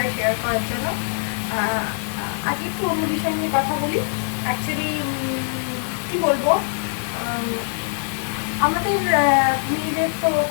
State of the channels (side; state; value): right; silent; 58 dB below the other